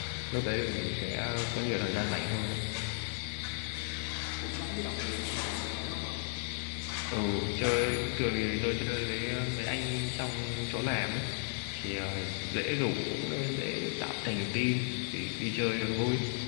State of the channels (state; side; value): silent; right; 55 dB below the other